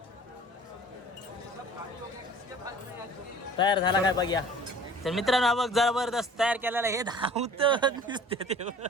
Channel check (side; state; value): both; normal; correlation 0.47